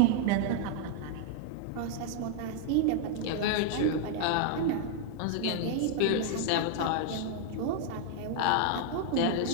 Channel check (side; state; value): both; different; correlation 0.00